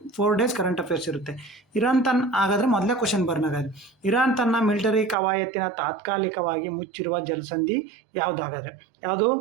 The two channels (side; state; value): left; drops out; at 5.2 s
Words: 4 ಡೇಸ್ ಕರೆಂಟ್ ಅಫೇರ್ಸ್ ಇರುತ್ತೆ. ಇರಾನ್ ಹಾಗಾದರೆ ಮೊದಲೇ ಕ್ವಶನ್ ಬರ್ನಾಗಾದ್ರೆ, ಇರಾನ್ ತನ್ನ ಮಿಲಿಟರಿ ಕವಾಯತಿನ ತಾತ್ಕಾಲಿಕವಾಗಿ ಮುಚ್ಚಿರುವ ಜಲಸಂಧಿ ಯಾವುದಾಗಾದ್ರೆ? ಯಾವುದು?